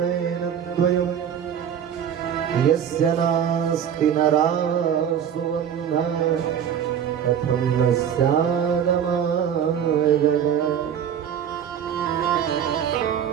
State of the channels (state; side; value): quieter; left; 8.7 dB